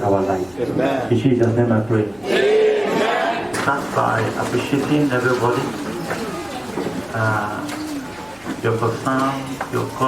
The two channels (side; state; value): left; noise; rumble, 28 dB below the sound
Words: our life. In Jesus' name I pray. Start by appreciating everybody, your concern, your